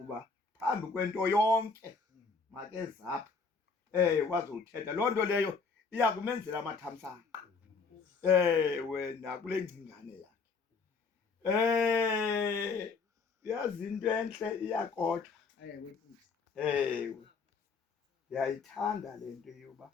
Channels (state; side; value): quieter; right; 4.7 dB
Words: phambi kwento yonke makezapha kwazothetha. Loo nto leyo iya kumenzela amathamsanqa nakule ngcingane yakhe. Yazi into entle iyakodwa. Ndiyayithanda le nto yoba